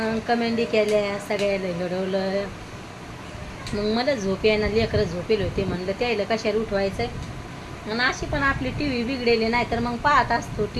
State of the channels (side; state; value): both; identical; correlation 1.00